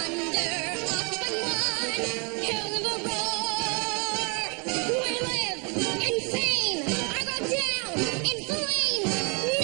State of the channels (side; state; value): left; quieter; 33.4 dB